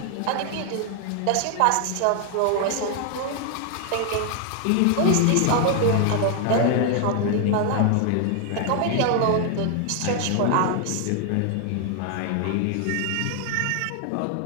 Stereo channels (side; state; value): both; different; correlation 0.00